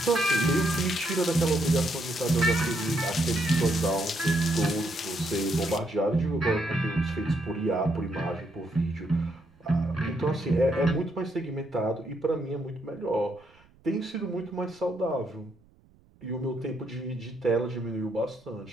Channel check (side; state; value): right; noise; rumble, 29 dB below the sound